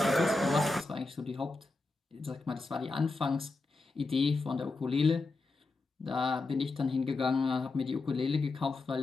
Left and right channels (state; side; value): quieter; right; 3.4 dB